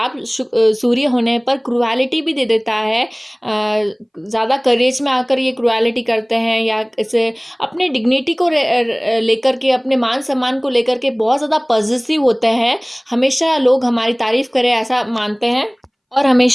सूर्य होने पर क्रुएलिटी भी दे देता है। ज़्यादा करेज में आकर ये क्रुएलिटी करते हैं या इसे अपने डिग्निटी को लेकर के, अपने मान सम्मान को लेकर के बहुत ज़्यादा पॉजिटिव होते हैं। हमेशा लोग हमारी तारीफ करें ऐसा मानते हैं और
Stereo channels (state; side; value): identical; both; correlation 1.00